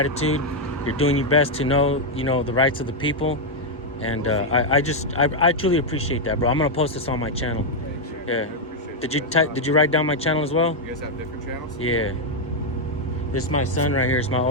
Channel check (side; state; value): both; normal; correlation -0.01